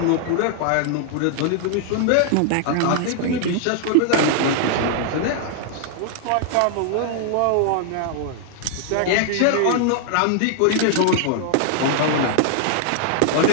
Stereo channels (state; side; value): different; both; correlation 0.00